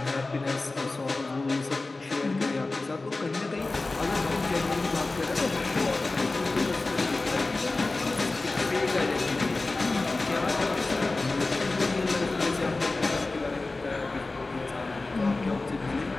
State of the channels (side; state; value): right; quieter; 3.3 dB